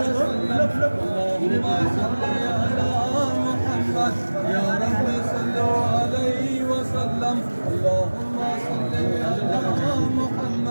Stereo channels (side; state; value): both; inverted; correlation -1.00